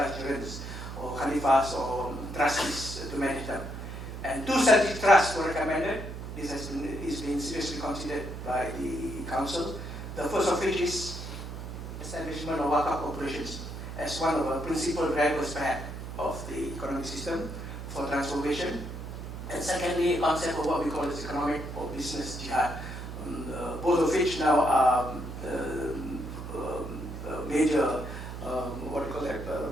or khalifas or trustees to manage them. And 2 strategic trusts were recommended. This is being seriously considered by the council. The first of which is establishment of Wakaf corporations as one of the principal drivers perhaps of the economic system for transformation. And secondly, a concept of what we call as economic or business jihad, both of which now are major, what do you call that,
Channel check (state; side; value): noise; right; hum, 8 dB below the sound